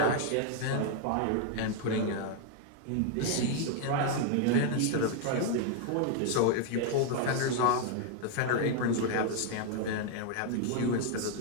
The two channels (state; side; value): different; both; correlation 0.00